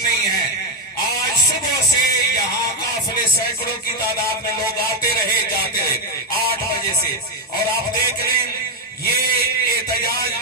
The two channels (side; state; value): both; normal; correlation 0.05